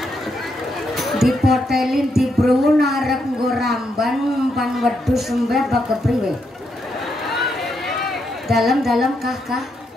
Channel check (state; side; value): normal; both; correlation 0.79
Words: dipotelin di bruun arep nggo ramban pan wedhus sembah bak kepriwe. Dalam-dalam kah